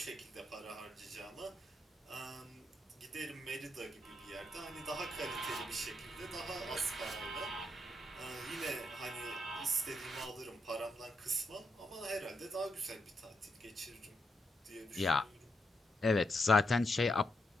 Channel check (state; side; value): normal; both; correlation 0.81